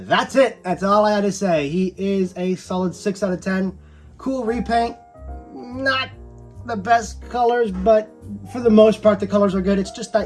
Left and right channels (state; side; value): identical; both; correlation 1.00